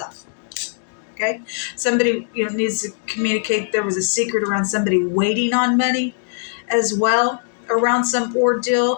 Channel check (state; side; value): silent; right; 59 dB below the other